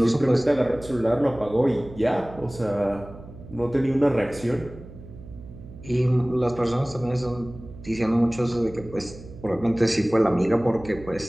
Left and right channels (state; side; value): noise; right; hum, 16 dB below the sound